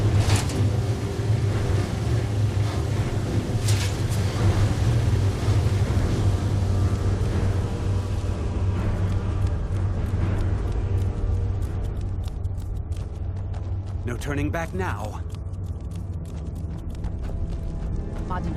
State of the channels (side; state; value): both; identical; correlation 1.00